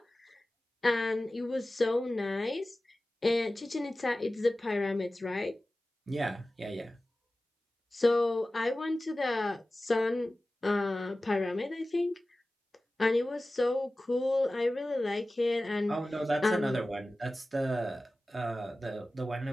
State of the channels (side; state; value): both; normal; correlation 0.96